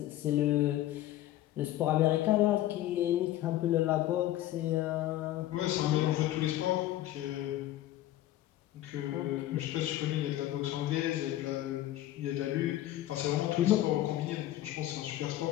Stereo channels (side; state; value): right; quieter; 14.2 dB